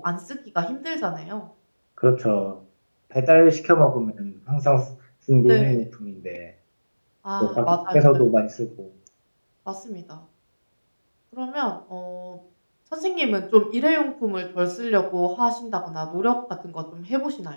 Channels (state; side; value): inverted; both; correlation -1.00